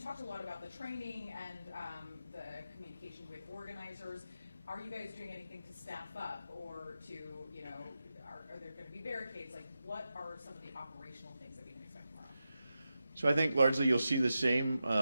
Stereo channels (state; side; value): inverted; both; correlation -0.90